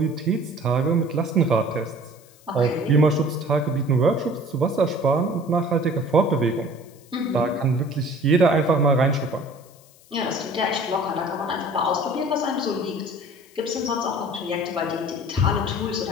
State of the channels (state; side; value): noise; left; hiss, 27 dB below the sound